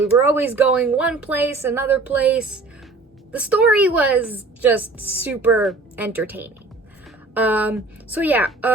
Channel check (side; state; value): left; quieter; 3.4 dB